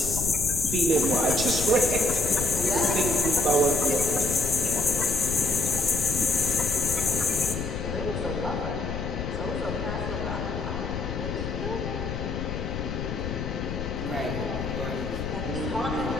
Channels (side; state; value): left; noise; rumble, 5 dB below the sound